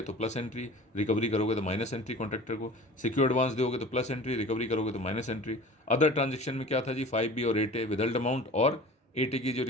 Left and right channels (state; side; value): normal; both; correlation 0.41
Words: तो प्लस एंट्री, रिकवरी करोगे तो माइनस एंट्री कॉन्ट्रैक्टर को। सिक्योर एडवांस दोगे तो प्लस एंट्री, रिकवरी करोगे तो माइनस एंट्री। अदर ट्रांजेक्शन में क्या था जी, 5B और 8A विदल्ड अमाउंट, और 8A की जो